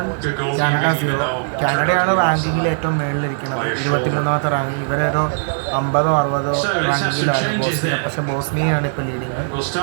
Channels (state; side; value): silent; left; 66 dB below the other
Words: Canada 0. കാനഡയാണ് റാങ്കിങ്ങിൽ ഏറ്റവും മുകളിലിരിക്കുന്നത്, 23ാമത്തെ റാങ്ക്. ഇവരൊരു 50-60 റാങ്കിങ്ങിലാണ് ബോസ്നിയ. പക്ഷെ ബോസ്നിയയാണ് ഇപ്പോൾ ലീഡിങ്.